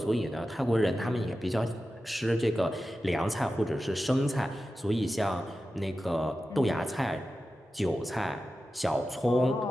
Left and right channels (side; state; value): both; normal; correlation 0.93